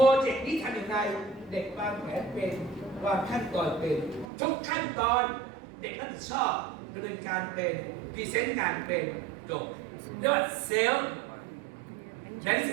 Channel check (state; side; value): drops out; left; at 4.2 s